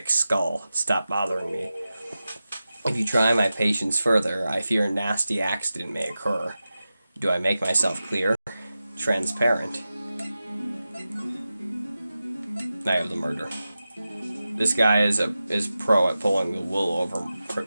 skull. Stop bothering me. If you try my patience further, I fear a nasty accident may occur. Do I make myself clear? Transparent. Night of the murder. This guy is pro at pulling the wool over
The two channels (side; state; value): both; inverted; correlation -0.94